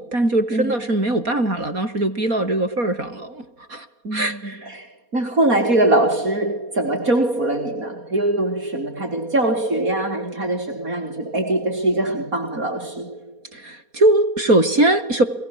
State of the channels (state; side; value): late; left; 4.2 ms